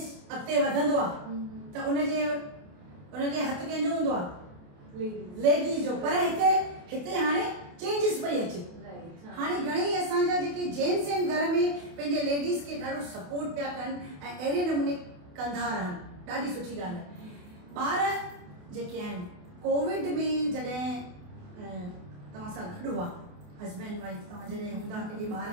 अॻिते वधंदो आहे त उनजे हथ कंहिंजो हूंदो आहे? लेडीज़ जो। पर हिते हाणे चेंजिस पई अचे। हाणे घणेई असांजा जेके जेंट्स आहिनि घर में पंहिंजे लेडीज़ खे ॾाढो सपोर्ट पिया कनि ऐं अहिड़े नमूने कंदा रहनि, ॾाढी सुठी ॻाल्हि आहे। ॿार जेके आहिनि कोविड में जॾहिं तव्हां सां गॾु हुआ, हस्बैंड वाइफ तव्हां जॾहिं हूंदा पंहिंजे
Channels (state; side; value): late; left; 28 ms